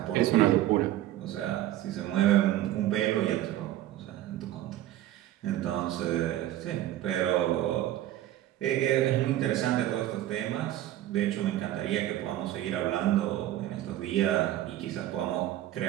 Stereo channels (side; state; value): left; quieter; 13.7 dB